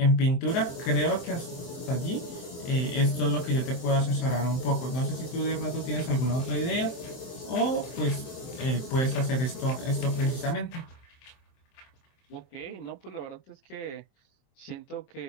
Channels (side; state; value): right; late; 23 ms